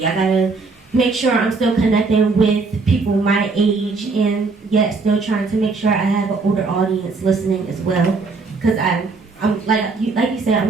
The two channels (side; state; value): left; quieter; 4.1 dB